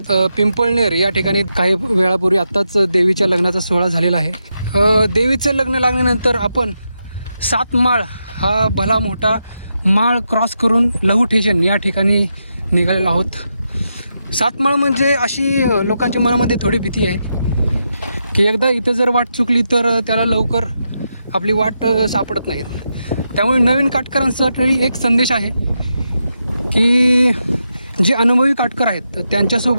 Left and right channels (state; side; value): inverted; both; correlation -0.85